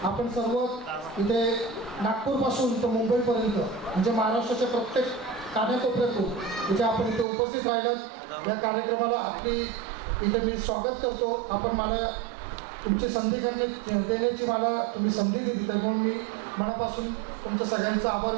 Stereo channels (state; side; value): drops out; left; at 7.2 s